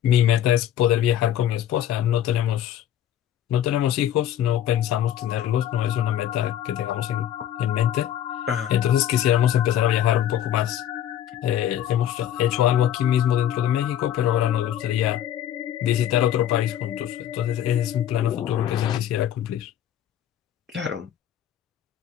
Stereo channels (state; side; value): quieter; right; 11.0 dB